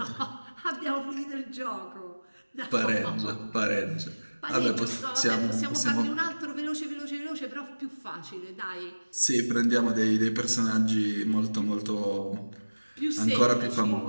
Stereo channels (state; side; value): inverted; both; correlation -1.00